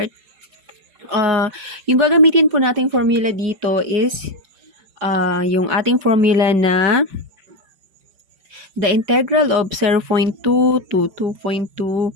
yung gagamitin po nating formula dito is yung ating formula na the integral of 0.2 to 2.2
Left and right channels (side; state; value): left; late; 5.1 ms